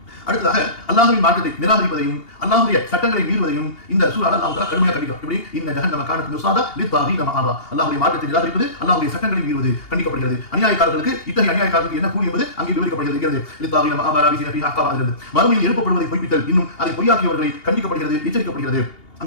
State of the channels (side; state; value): right; late; 2.8 ms